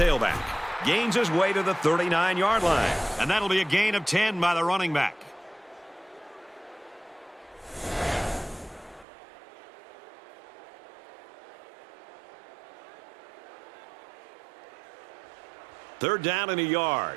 Gains his way to the 39-yard line. And that'll be a gain of 10 by the running back. Third down and a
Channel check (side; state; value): left; drops out; at 9.1 s